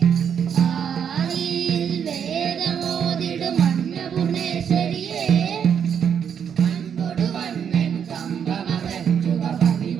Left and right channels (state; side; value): quieter; left; 7.9 dB